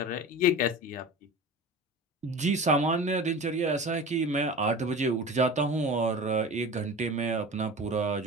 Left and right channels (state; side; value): normal; both; correlation 0.34